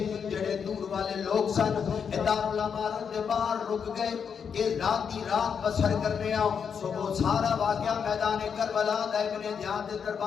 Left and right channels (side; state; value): right; quieter; 6.8 dB